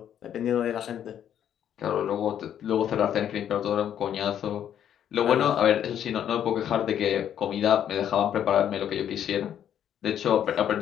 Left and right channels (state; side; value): quieter; right; 9.8 dB